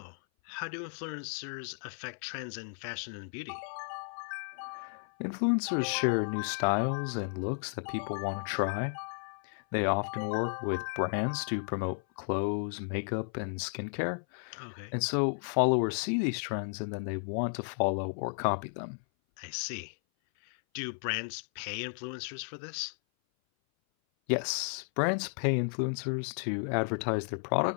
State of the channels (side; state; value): right; silent; 55 dB below the other